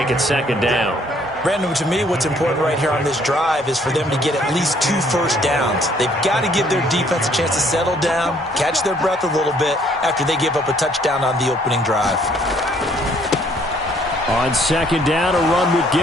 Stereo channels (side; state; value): both; normal; correlation 0.63